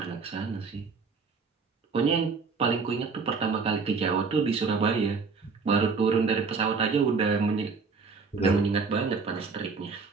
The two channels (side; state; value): left; quieter; 4.8 dB